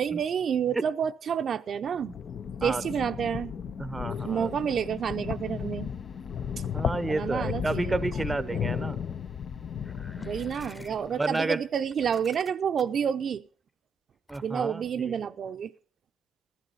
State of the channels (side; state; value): left; quieter; 3.5 dB